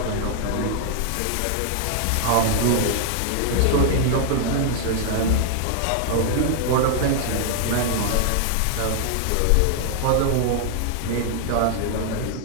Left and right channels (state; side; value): different; both; correlation 0.00